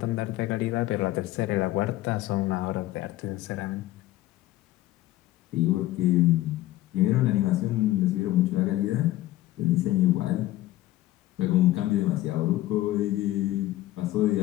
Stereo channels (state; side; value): quieter; right; 15.8 dB